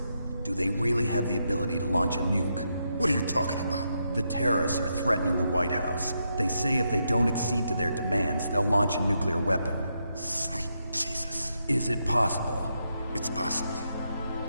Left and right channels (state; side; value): inverted; both; correlation -0.82